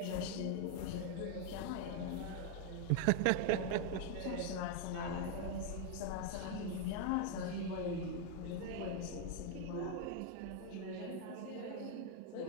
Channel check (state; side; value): different; both; correlation 0.00